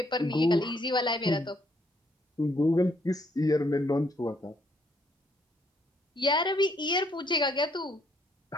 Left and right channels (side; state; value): both; normal; correlation 0.69